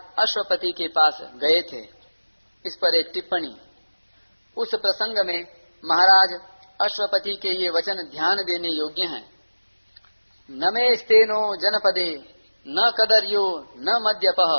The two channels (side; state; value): both; inverted; correlation -1.00